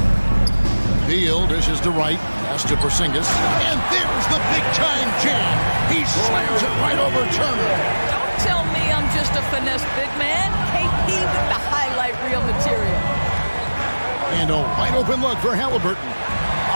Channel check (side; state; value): both; inverted; correlation -1.00